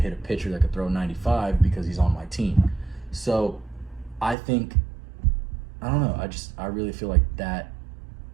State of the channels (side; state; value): left; drops out; at 4.4 s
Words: a pitcher that could throw 95 because he's on my team. So I think, I don't know, I really feel like that